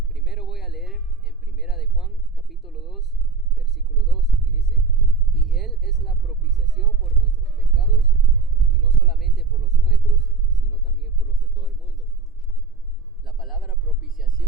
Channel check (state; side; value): quieter; left; 4.5 dB